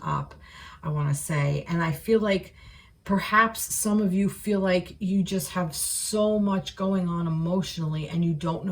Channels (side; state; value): both; identical; correlation 1.00